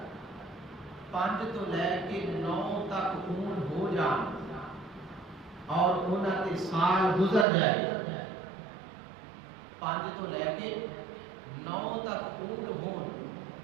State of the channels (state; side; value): drops out; left; at 7.5 s